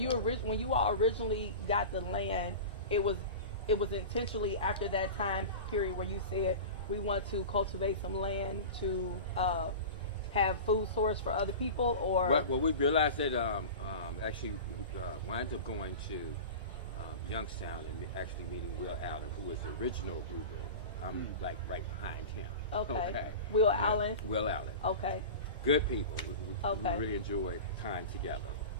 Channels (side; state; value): both; inverted; correlation -0.32